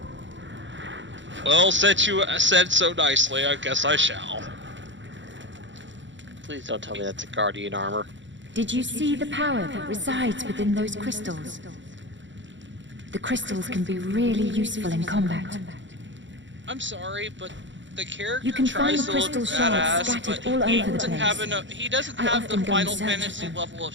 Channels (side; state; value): left; late; 0.54 ms